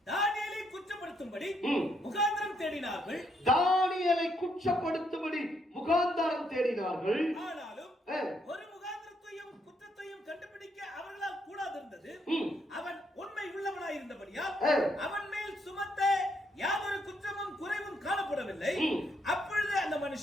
தானியேலை குற்றப்படுத்தும்படி முகாந்திரம் தேடினார்கள். தானியேலை குற்றப்படுத்தும்படி முகாந்திரம் தேடினார்கள். ஆனாலும் ஒரு முகாந்திரத்தையும் குற்றத்தையும் கண்டுபிடிக்க அவர்களால் கூடாதிருந்தது. அவன் உண்மை உள்ளவனாய் இருந்தபடியால் அவன் மேல் சுமத்த யாதொரு குற்றமும் குறைவும் காணப்படவில்லை. அப்பொழுது அந்த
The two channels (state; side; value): normal; both; correlation 0.74